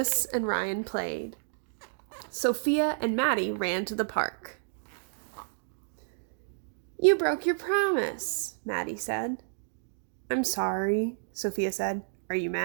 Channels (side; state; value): left; silent; digital silence